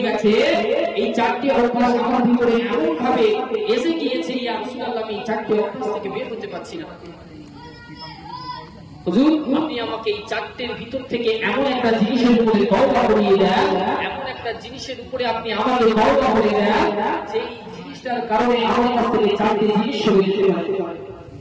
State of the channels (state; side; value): identical; both; correlation 1.00